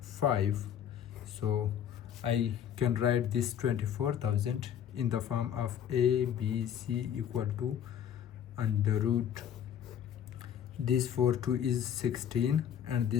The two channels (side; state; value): right; quieter; 9.4 dB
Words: 5. So I can write this 24,000 in the form of a b c equal to under root this 4 2 is 16 and